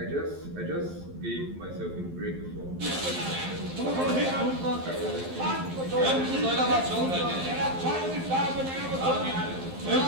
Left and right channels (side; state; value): left; late; 11 ms